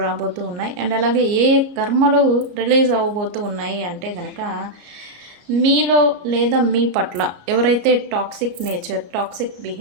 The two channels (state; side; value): late; left; 34 ms